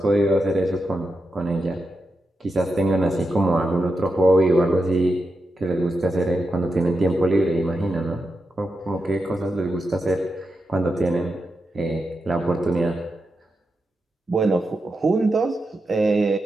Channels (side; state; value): both; normal; correlation 0.87